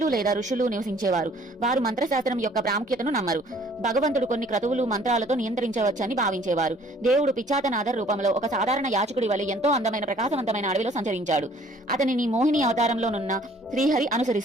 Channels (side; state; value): both; normal; correlation 0.57